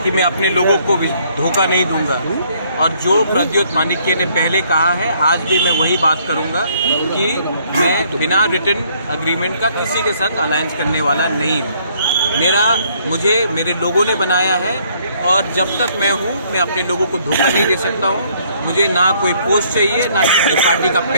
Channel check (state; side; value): inverted; both; correlation -0.65